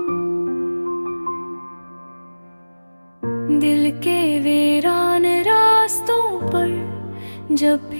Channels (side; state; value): both; inverted; correlation -1.00